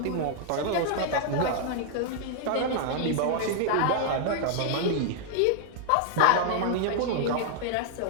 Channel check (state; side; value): different; both; correlation 0.00